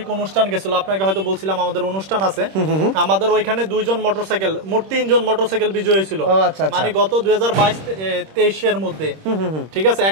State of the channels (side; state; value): left; late; 26 ms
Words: অনুষ্ঠান গেছিল, আপনাকে হয়তো বলছিলাম আমাদের অনুষ্ঠান আছে। আমাদের ওইখানে 2 জন মোটরসাইকেল, মোট 3 জন মোটরসাইকেল বিজয়ী হয়েছিল। মানে গত 2022-23 এর মধ্যে, ঠিক আছে,